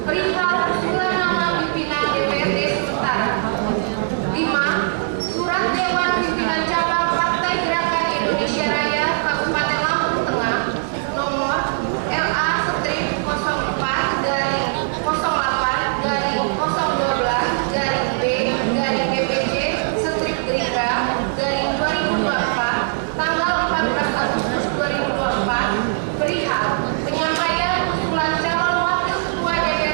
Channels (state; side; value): silent; left; digital silence